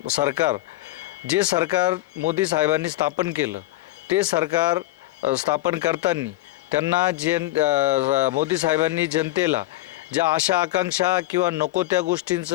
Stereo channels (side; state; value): right; quieter; 17.1 dB